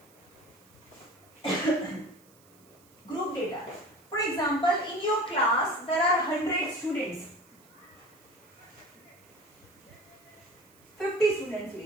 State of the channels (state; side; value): noise; right; hiss, 28 dB below the sound